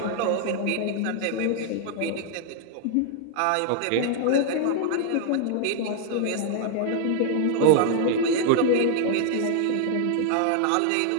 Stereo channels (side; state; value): both; different; correlation 0.00